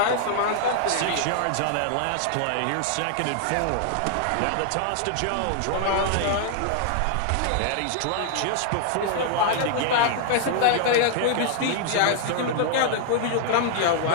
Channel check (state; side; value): different; both; correlation 0.00